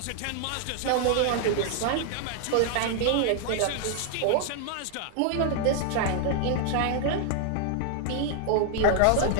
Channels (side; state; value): both; different; correlation 0.00